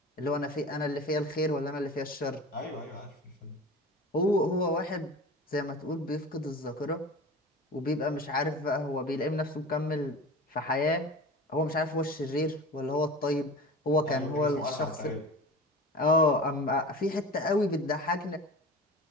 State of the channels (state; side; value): normal; both; correlation 0.35